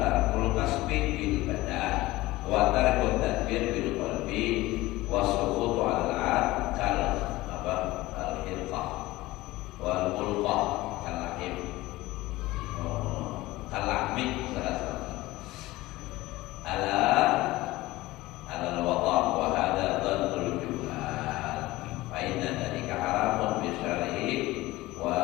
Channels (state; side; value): quieter; right; 18.7 dB